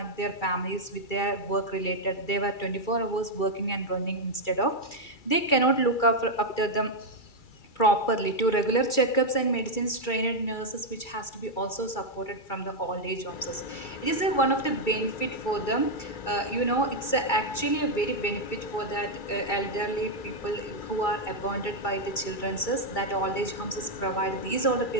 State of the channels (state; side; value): late; right; 2.3 ms